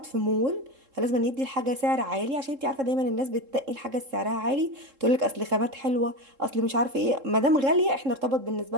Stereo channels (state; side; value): late; left; 3.7 ms